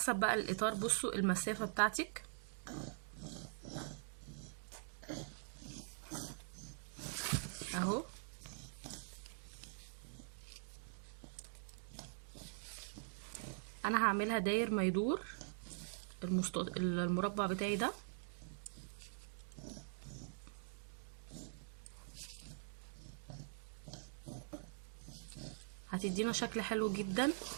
بقى الاطار. بصوا المسافه بتاعتك اهو. انا هعملها داير ما يدور المربع بتاعي ده. هتدي هتدينا شكل حلو جدا،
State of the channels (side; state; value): left; silent; digital silence